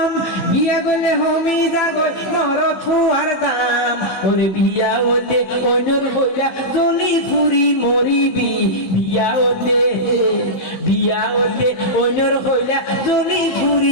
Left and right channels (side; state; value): right; late; 15 ms